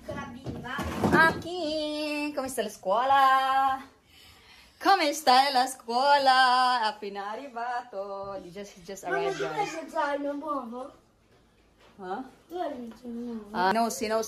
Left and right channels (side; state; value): both; identical; correlation 1.00